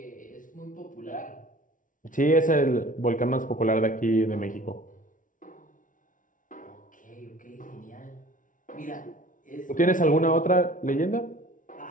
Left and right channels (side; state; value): right; late; 0.38 ms